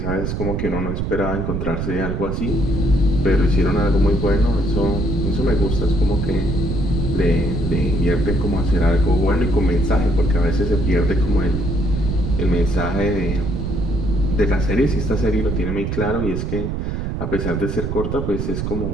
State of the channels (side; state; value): right; noise; rumble, 2 dB below the sound